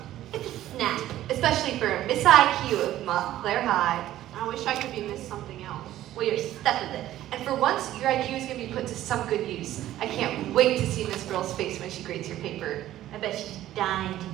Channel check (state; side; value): quieter; left; 13.6 dB